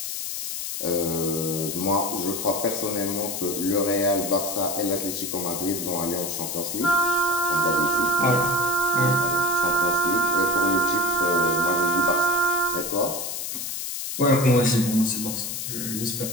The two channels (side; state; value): left; noise; hiss, 4 dB below the sound